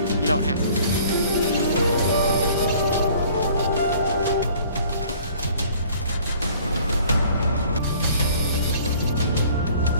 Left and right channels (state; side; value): inverted; both; correlation -0.53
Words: you don't have to.